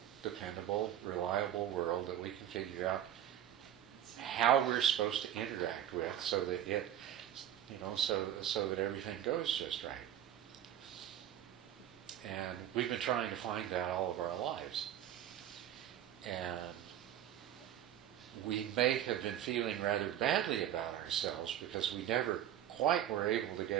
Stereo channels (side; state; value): left; quieter; 11.0 dB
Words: dependable, reliable world that we can figure out how we're supposed to interact with so that it, so that everything goes just right. And we've been trying to find that all of our lives. And we may have been feeling rather badly about ourselves because we never quite were able to